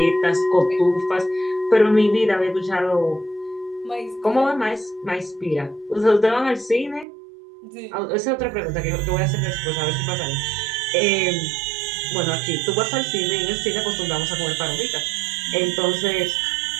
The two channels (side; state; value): left; drops out; at 7.1 s